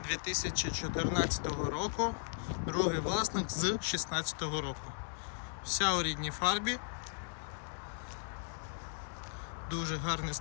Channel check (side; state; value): right; silent; digital silence